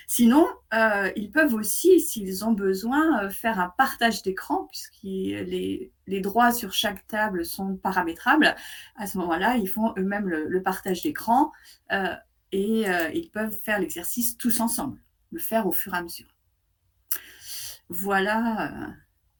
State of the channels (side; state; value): both; identical; correlation 1.00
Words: Sinon, ils peuvent aussi, s'ils ont besoin, faire un partage d'écran, puisque les droits sur chaque table sont paramétrables. À ce moment-là, ils font eux-mêmes le partage d'écran et ils peuvent faire l'exercice tous ensemble, le faire au fur et à mesure. Voilà.